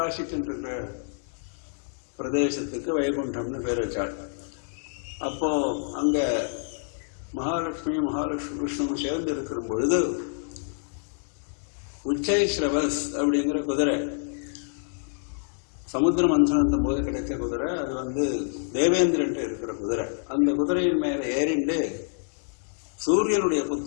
பிரதேசத்துக்கு வைகுண்டம்னு பேர் வச்சாள். அப்போ அங்க மகாலட்சுமி விஷ்ணுவும் சேர்ந்து இருக்கிற பொழுது உச்சைஸ்ரவஸ் அப்படிங்கிற குதிரை, சமுத்திர மந்தனத்தும் போது கிடைச்ச குதிரை, அது தேவேந்திரன் இருக்கிற குதிரை. அந்த குதிரையின் மேல ஏறிண்டு சூரியனுடைய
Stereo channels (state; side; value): silent; right; digital silence